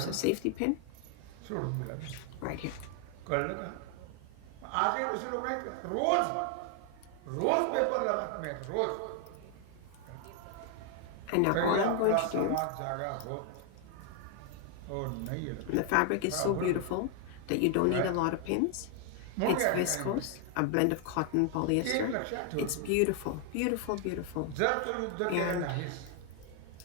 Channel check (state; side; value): different; both; correlation 0.00